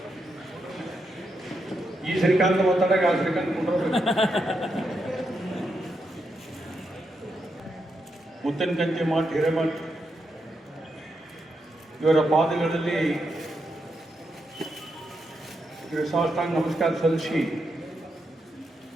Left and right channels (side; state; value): both; normal; correlation 0.83